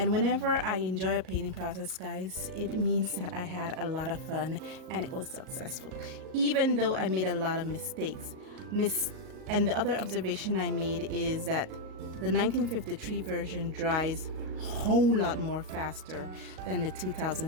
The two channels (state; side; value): late; left; 38 ms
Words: whenever I enjoy a painting process, guys, it means that I had a lot of fun and it was successful. Even though I made a lot of mistakes. And the other observation I made is that the 1953 version dries a whole lot more faster than the